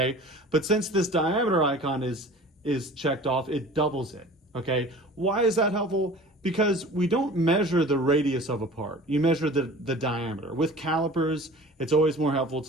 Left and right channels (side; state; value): both; normal; correlation 0.42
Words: But since this diameter icon is checked off, it doubles it, okay? Why is that helpful? Because we don't measure the radius of a part. You measure the diameter. With calipers, it's always more helpful